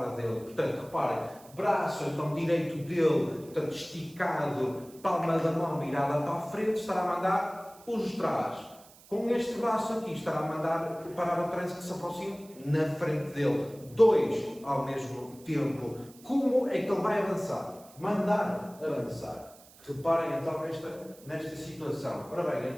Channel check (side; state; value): right; noise; hiss, 23 dB below the sound